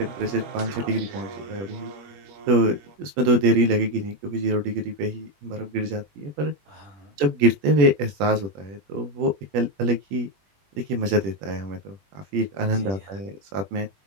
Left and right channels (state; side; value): late; left; 21 ms